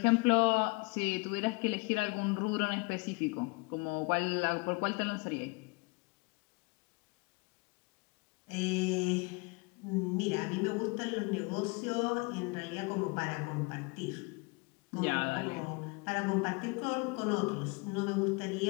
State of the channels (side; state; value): right; quieter; 29.9 dB